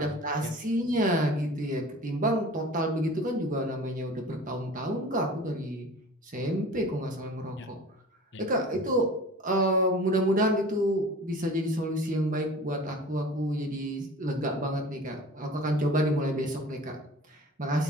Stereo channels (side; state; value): both; normal; correlation 0.41